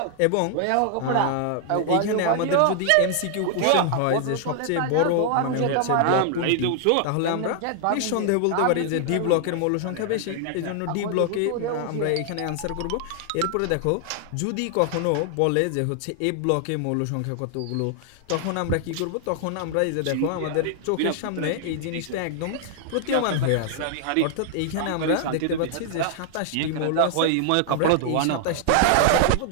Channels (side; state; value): both; different; correlation 0.00